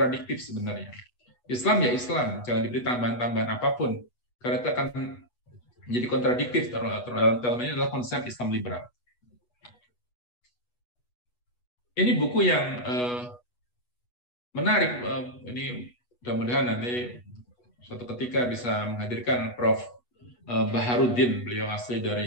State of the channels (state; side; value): late; right; 8.2 ms